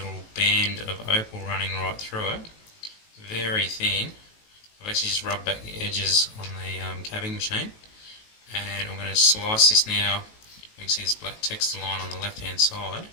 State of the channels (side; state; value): right; late; 19 ms